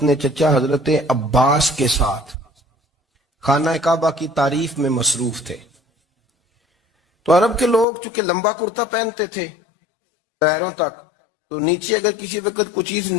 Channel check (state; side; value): drops out; right; at 7.9 s